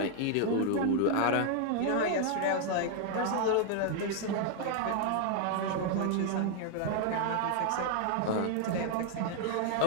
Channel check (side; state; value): both; different; correlation 0.00